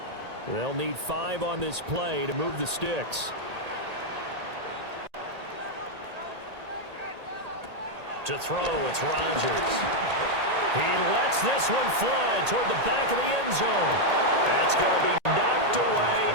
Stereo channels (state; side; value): late; left; 1.8 ms